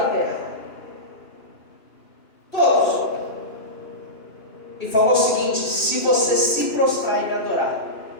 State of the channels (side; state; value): right; late; 2.6 ms